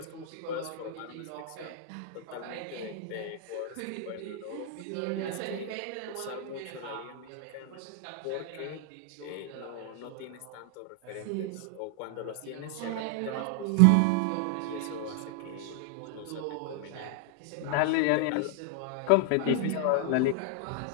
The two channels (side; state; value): both; different; correlation 0.00